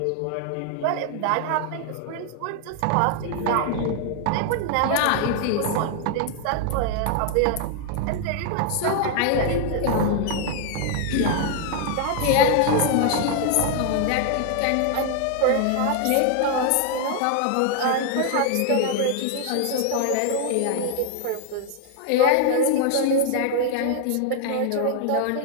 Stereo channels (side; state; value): both; different; correlation 0.00